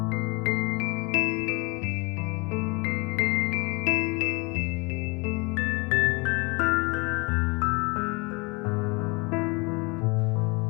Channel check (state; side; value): quieter; right; 28.2 dB